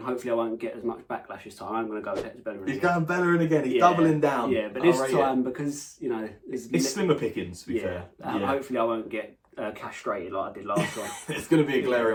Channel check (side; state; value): both; identical; correlation 1.00